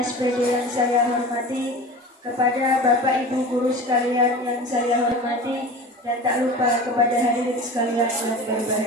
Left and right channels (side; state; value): both; normal; correlation 0.35